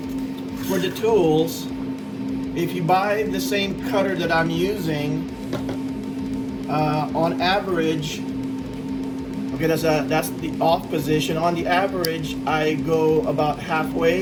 for the tools, if you buy the same cutter that I'm using, on average, okay, that's the off position. On the average, I go about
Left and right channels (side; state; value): both; identical; correlation 1.00